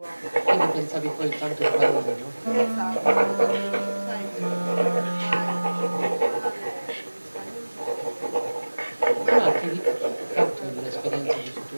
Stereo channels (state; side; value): inverted; both; correlation -1.00